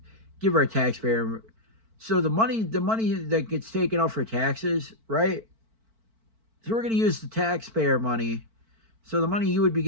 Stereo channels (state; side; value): late; left; 4.5 ms